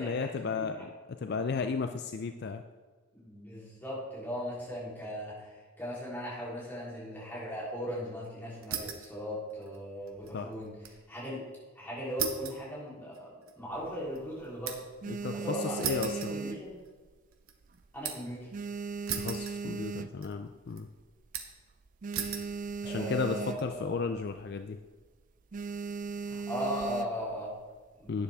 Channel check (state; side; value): normal; both; correlation 0.31